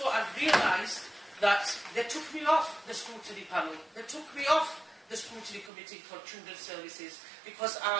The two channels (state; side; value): drops out; left; at 5.7 s